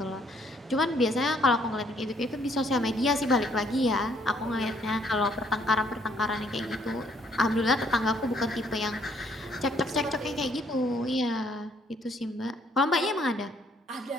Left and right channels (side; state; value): both; normal; correlation 0.66